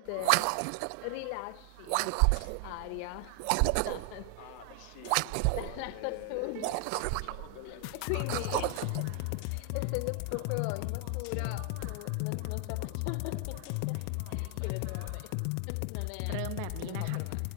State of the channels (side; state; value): both; different; correlation 0.00